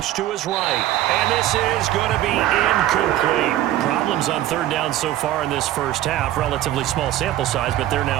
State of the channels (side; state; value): left; quieter; 13.6 dB